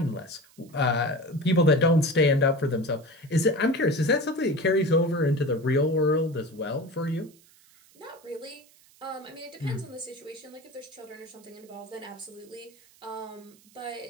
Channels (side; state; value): right; noise; hiss, 28 dB below the sound